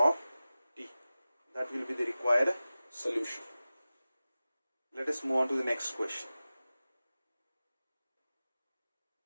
t. That will be the required solution. Let us move on to the next question.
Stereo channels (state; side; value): inverted; both; correlation -0.96